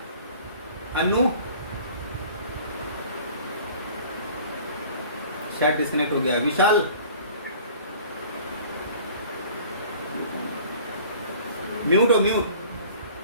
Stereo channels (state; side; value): inverted; both; correlation -0.48